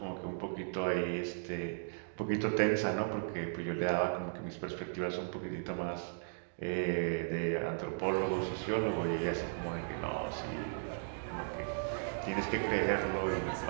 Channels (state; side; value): silent; left; digital silence